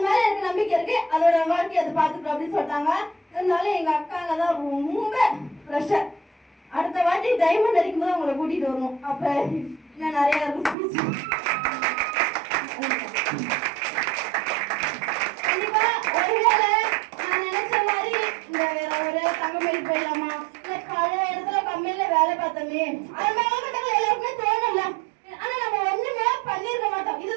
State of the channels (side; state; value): left; drops out; at 10.8 s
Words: மேல எனக்கு நம்பிக்கை இருக்கு, அதோட வாழ்க்கை அதை பாத்துக்கோ அப்படின்னு சொல்லிட்டாங்க. இருந்தாலும் எங்க அக்காங்க தான் ரொம்ப ப்ரெஷர். அடுத்த வாட்டி டைமண்ட் அடிக்கும் போது அவங்களை கூட்டிட்டு வரணும். அப்ப இன்னும் நிறைய இருக்கும். கண்டிப்பா ஒருவேளை நான் நினைச்ச மாதிரி இந்த வேற ஒரு தங்கமேல் போயிடலாமா, இல்ல பழைய இடத்துல கம்பெனில வேலை பார்த்தோமே, அது மேலகட்டங்கள் எல்லாருக்குமே தோணல. ஆனா நம்ம ஒண்ணுமே பண்ணிருக்க மாட்டோம்.